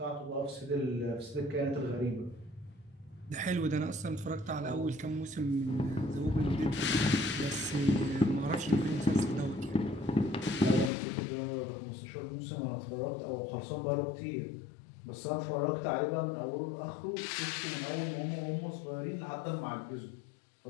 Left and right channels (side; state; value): right; drops out; at 10.9 s